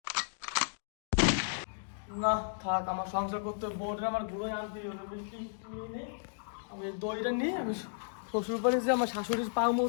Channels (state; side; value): silent; right; digital silence